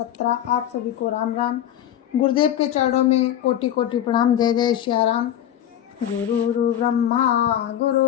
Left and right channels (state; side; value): quieter; right; 11.0 dB